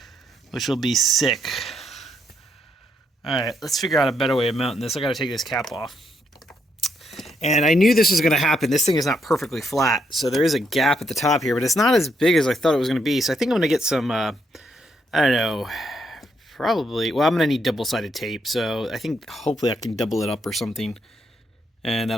which will be sick. Alright, let's figure out a better way of mounting this. I gotta take this cap off. And I knew this was going to happen. This thing is not perfectly flat, so there is a gap at the top here, but it's not as big as I thought it was going to be. So I think I'm going to get some, I don't know, probably, well, I'm going to need double-sided tape, so I think hopefully I can double it up or something, and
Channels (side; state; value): both; normal; correlation 0.76